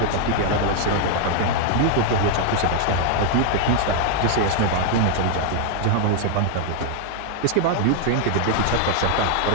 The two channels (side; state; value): both; different; correlation 0.00